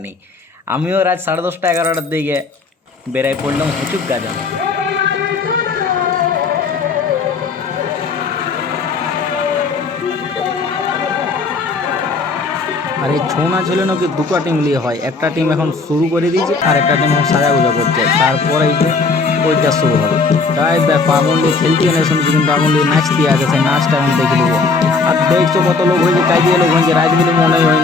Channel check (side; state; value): right; quieter; 4.3 dB